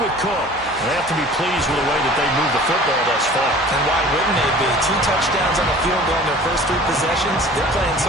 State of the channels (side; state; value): both; normal; correlation 0.45